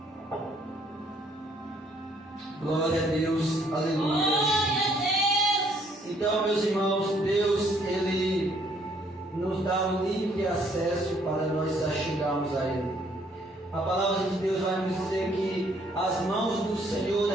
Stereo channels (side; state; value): both; normal; correlation 0.65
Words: Glória a Deus, aleluia. Então, meus irmãos, Deus, Ele nos dá um livre acesso para nós chegarmos a Ele. A palavra de Deus vai nos dizer que as mãos do Senhor,